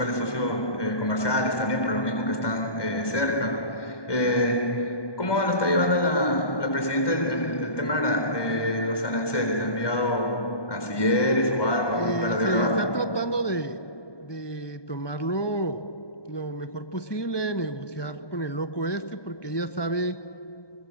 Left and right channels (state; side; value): late; right; 1.2 ms